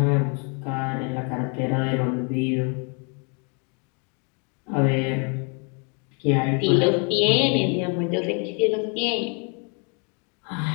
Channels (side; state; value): right; quieter; 36.1 dB